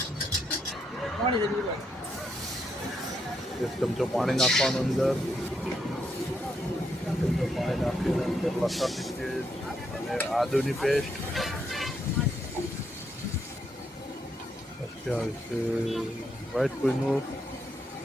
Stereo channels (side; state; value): both; normal; correlation 0.78